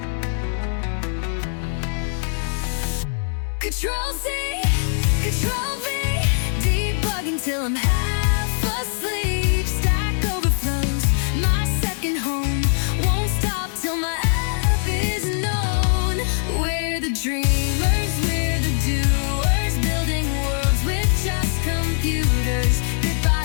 Control C, Control V, debugging till I'm half asleep. Stack overflows, my second home. Won't stop till my app is known. We're the dreamers, we're the doers, building worlds with just computers. Bit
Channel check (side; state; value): right; silent; digital silence